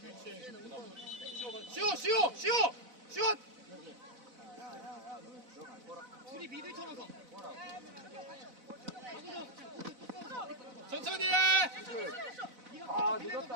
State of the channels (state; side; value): late; left; 4.0 ms